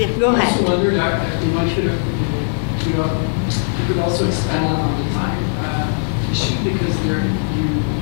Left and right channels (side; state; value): right; silent; digital silence